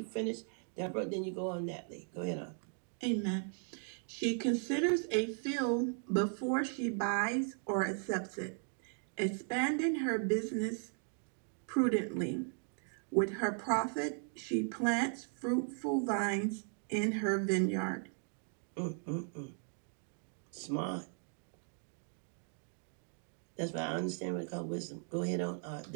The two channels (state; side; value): silent; left; 53 dB below the other